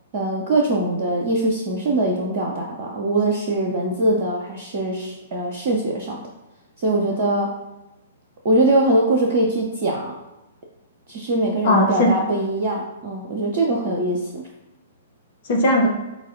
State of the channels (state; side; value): inverted; both; correlation -0.36